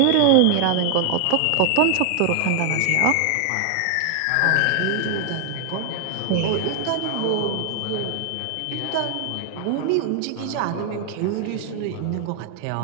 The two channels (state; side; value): different; both; correlation 0.00